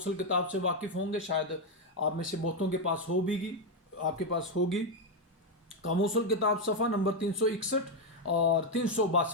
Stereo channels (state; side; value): normal; both; correlation 0.04